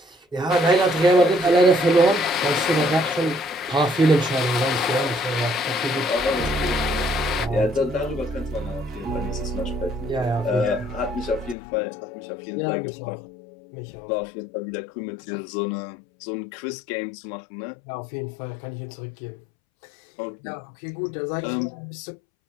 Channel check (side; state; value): right; drops out; at 11.6 s